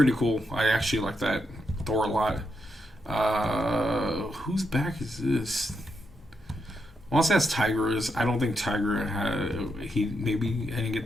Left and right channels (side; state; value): both; normal; correlation 0.82